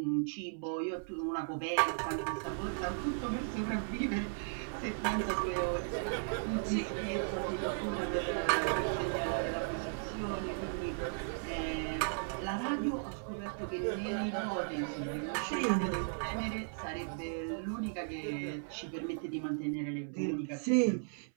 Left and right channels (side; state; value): left; silent; 54 dB below the other